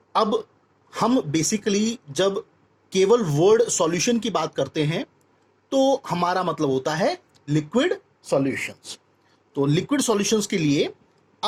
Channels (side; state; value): both; identical; correlation 1.00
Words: अब हम basically जब केवल word solution की बात करते हैं तो हमारा मतलब होता है लिक्विड सॉल्यूशंस. तो लिक्विड सॉल्यूशंस के लिए